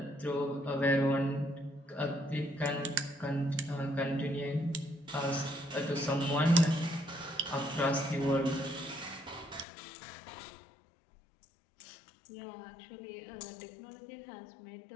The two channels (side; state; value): right; drops out; at 9.7 s